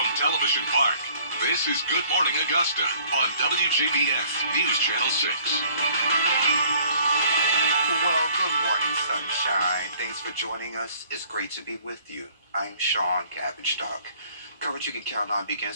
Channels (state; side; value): inverted; both; correlation -0.56